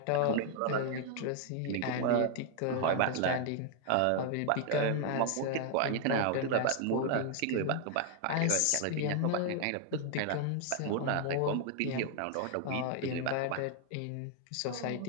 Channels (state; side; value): different; both; correlation 0.00